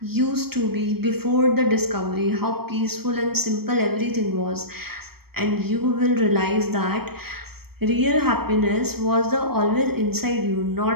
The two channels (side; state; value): left; late; 0.96 ms